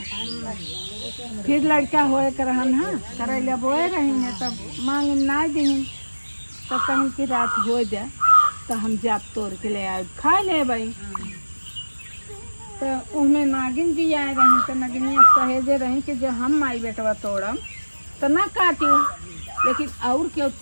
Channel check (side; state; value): both; inverted; correlation -1.00